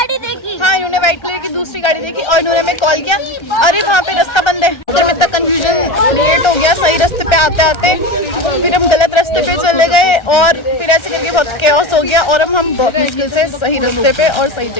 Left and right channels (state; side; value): late; right; 1.3 ms